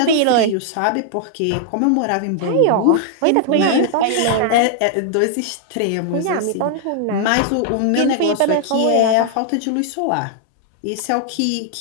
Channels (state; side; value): different; both; correlation 0.00